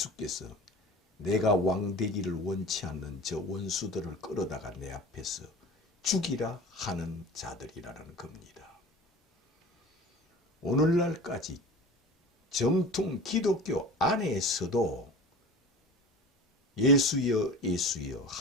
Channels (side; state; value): both; normal; correlation 0.37